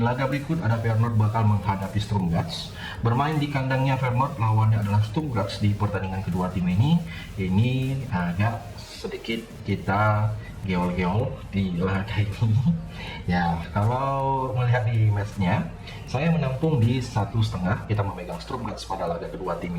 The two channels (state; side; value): identical; both; correlation 1.00